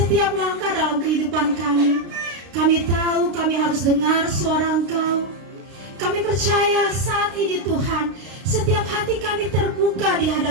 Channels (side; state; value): left; late; 32 ms